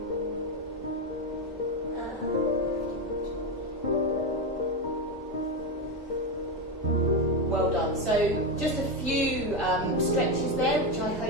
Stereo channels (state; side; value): normal; both; correlation 0.11